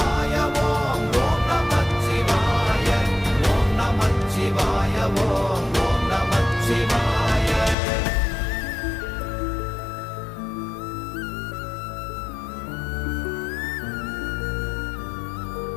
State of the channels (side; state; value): right; drops out; at 7.8 s